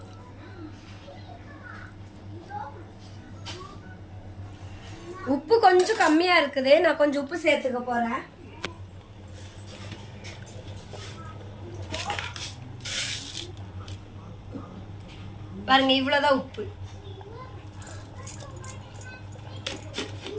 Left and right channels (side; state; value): both; identical; correlation 1.00